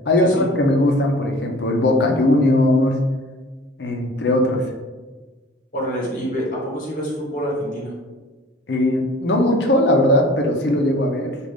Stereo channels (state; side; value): normal; both; correlation 0.46